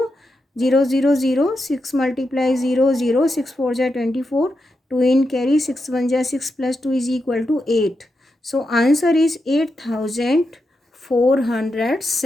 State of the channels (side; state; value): both; normal; correlation 0.86